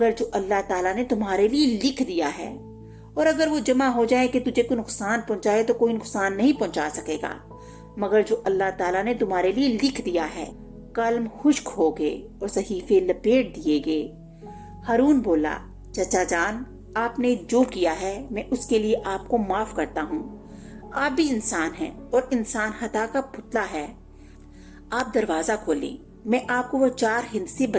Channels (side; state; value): both; identical; correlation 1.00